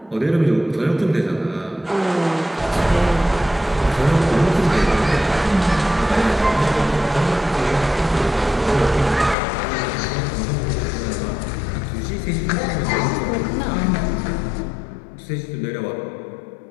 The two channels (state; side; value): drops out; right; at 9.3 s